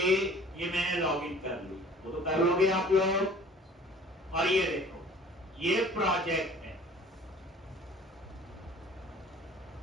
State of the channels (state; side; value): normal; both; correlation 0.49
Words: ये मैंने लॉगिन कर ली, वो तो कर लोगे आप लोग। और ये देखो, ये प्रोजेक्ट है,